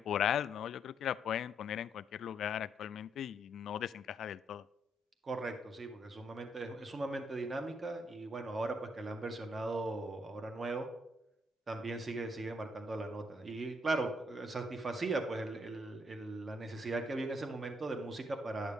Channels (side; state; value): both; normal; correlation 0.73